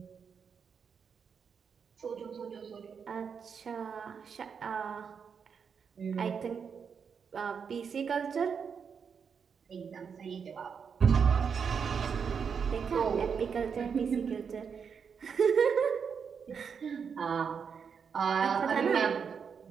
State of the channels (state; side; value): quieter; left; 6.5 dB